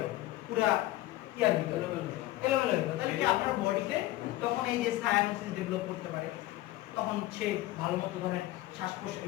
পুরা ইয়ার ভিতরে এলোমেলো হয়ে গেল তাহলে কি আপনার বডিতে তখন এই যে সায়ানোসিস ডেভেলপ করতে পারে তখন সে ভালো মতো ধরেন শ্বাস প্রশ্বাস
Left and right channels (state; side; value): quieter; right; 16.3 dB